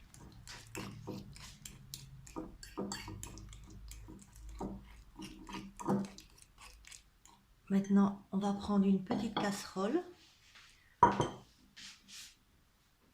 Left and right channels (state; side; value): identical; both; correlation 1.00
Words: Maintenant, on va prendre une petite casserole.